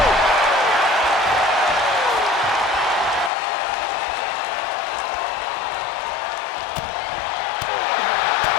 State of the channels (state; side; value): drops out; right; at 3.3 s